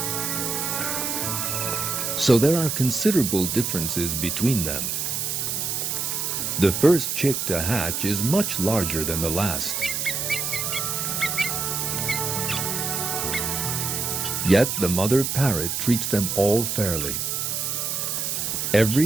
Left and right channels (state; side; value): noise; right; hiss, 1 dB below the sound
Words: So there are considerable differences between them. The first chick to hatch is much larger than the last. Yet the mother parrot treats them all fairly.